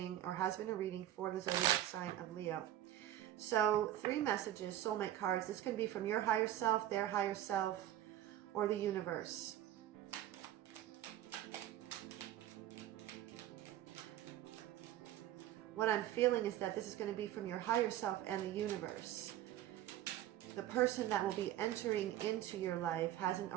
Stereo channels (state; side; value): quieter; left; 12.6 dB